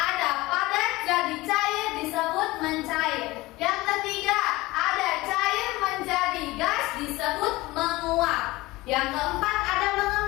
padat jadi cair disebut mencair. Yang ketiga ada cair menjadi gas disebut menguap. Yang keempat ada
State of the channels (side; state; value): right; quieter; 20.1 dB